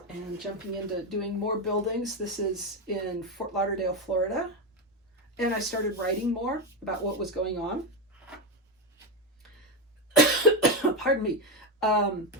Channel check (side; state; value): both; normal; correlation 0.11